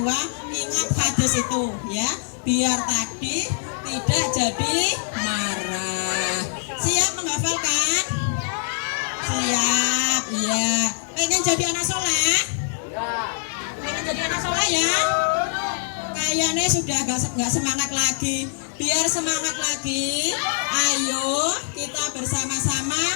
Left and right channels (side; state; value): right; silent; digital silence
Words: ingat hadis itu ya, biar tadi tidak jadi marah. Siap menghafalkan? Siap, iya. Pengen jadi anak soleh? Pengen jadi anak soleh ya? Kayaknya sudah gak semangat lagi. Biar semangat lagi, ayo kita